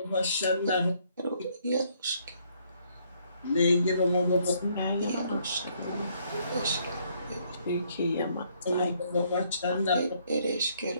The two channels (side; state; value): both; inverted; correlation -0.68